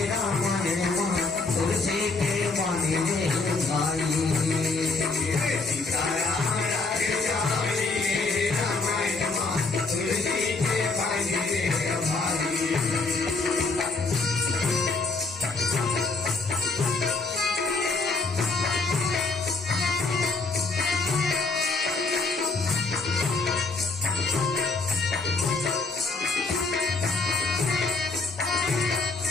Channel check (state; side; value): quieter; right; 3.8 dB